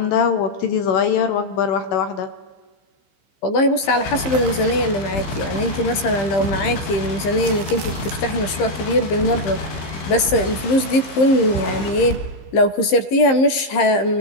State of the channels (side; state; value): right; late; 15 ms